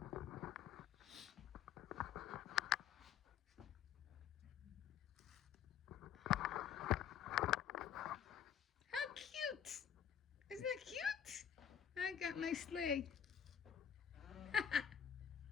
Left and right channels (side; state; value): right; quieter; 8.7 dB